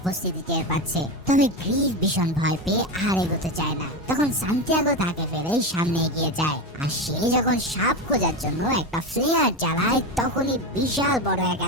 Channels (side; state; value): both; normal; correlation 0.18